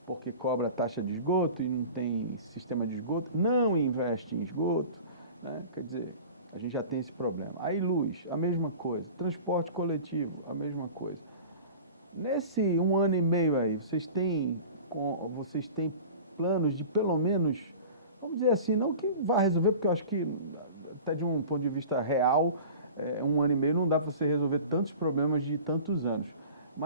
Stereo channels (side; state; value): both; inverted; correlation -0.40